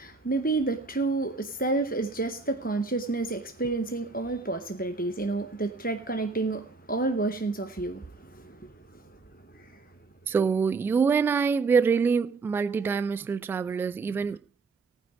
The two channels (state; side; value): quieter; left; 4.2 dB